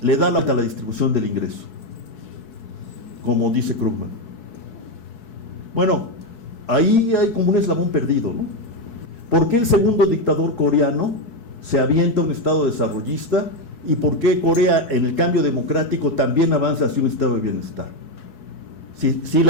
le da la distribución del ingreso, como dice Krugman. Bueno, ahí hay como un eslabón perdido, ¿no? ¿Por qué el segundo dictador coreano se avienta a un estado desarrollista? ¿Y por qué Corea, en el cambio democrático, también avanza hacia un estado de bienestar? Si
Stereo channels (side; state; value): right; late; 4.7 ms